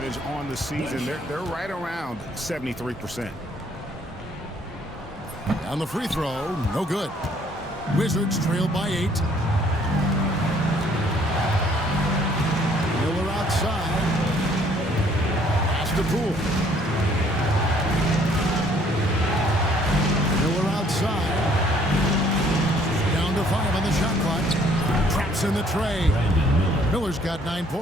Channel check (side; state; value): both; normal; correlation 0.62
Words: on the season, they're right around 73%. On the free throw, no good. Wizards trail by 8. Miller outside. Pass to Poole. Miller outside. Down to 5 on the shot clock. Traps in the tray. Miller's got 9